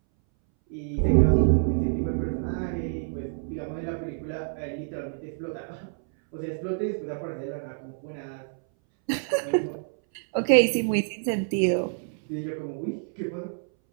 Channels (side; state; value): left; silent; 60 dB below the other